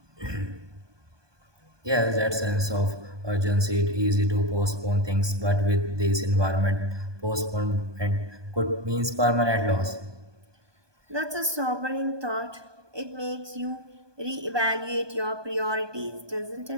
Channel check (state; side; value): late; left; 1.2 ms